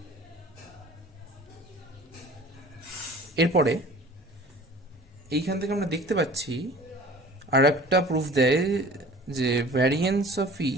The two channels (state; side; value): normal; both; correlation 0.45